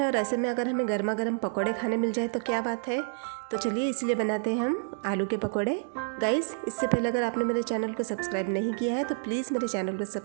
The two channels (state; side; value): silent; left; digital silence